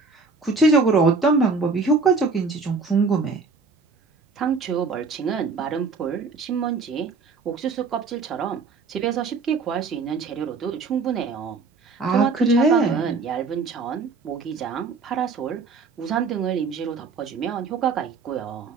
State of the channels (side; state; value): left; quieter; 4.3 dB